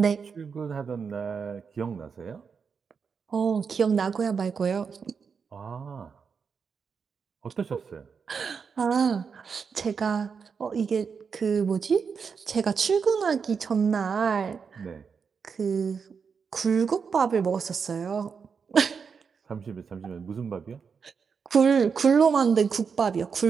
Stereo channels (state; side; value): quieter; left; 5.9 dB